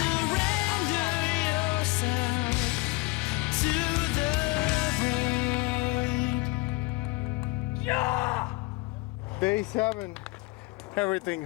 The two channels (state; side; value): quieter; right; 23.0 dB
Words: Day 7, everything